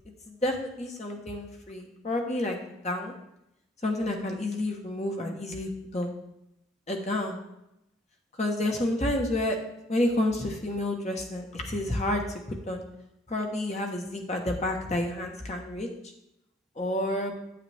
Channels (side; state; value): both; normal; correlation 0.60